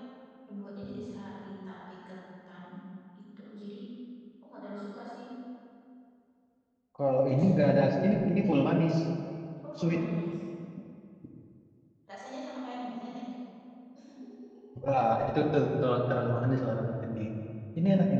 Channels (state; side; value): identical; both; correlation 1.00